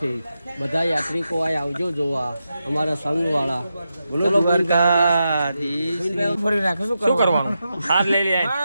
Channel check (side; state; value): both; inverted; correlation -0.88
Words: બધા યાત્રિકો અહીં આવજો જોવા, અમારા સંઘવાળા. બોલો શું કરવાનું? હાર લઈ લે.